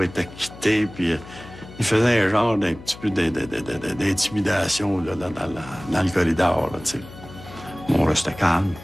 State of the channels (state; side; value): noise; left; hum, 17 dB below the sound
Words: être acquitté », puis il faisait un genre d'un petit peu d'intimidation là, dans le corridor, là, tu sais. On reste calme,